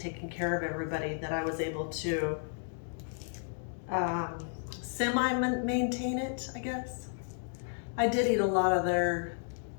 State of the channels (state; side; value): silent; right; digital silence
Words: care of everybody that I was able to semi-maintain it, I guess. I did eat a lot of their